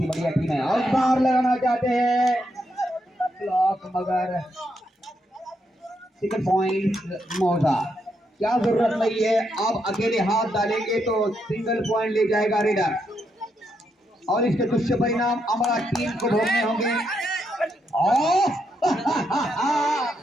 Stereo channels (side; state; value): both; normal; correlation 0.80